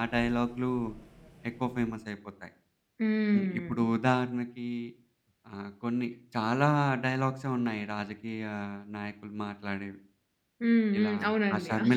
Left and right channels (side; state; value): both; identical; correlation 1.00